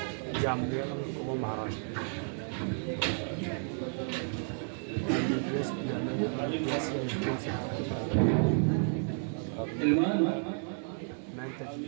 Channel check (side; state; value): left; silent; 56 dB below the other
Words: जामलिया वो महाराष्ट्र